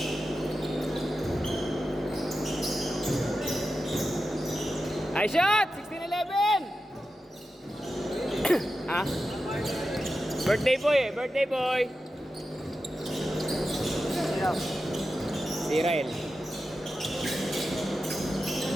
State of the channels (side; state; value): both; normal; correlation 0.91